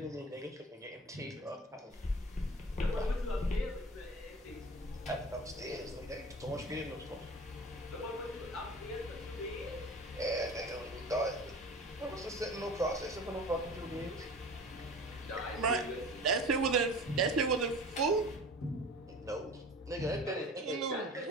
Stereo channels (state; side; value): normal; both; correlation 0.39